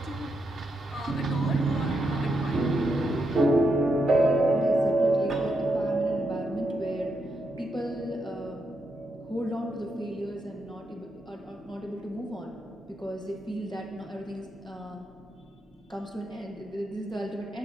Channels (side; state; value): both; normal; correlation 0.82